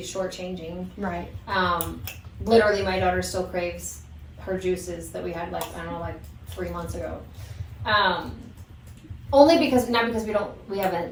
shortchanging. Right. Literally, my daughter still craves her juices that we had, like, I don't know, like 3 months ago. Only because, not because we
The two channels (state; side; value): identical; both; correlation 1.00